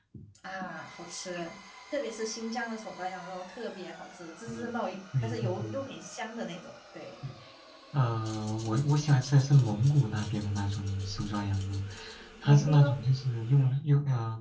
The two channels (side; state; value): both; identical; correlation 1.00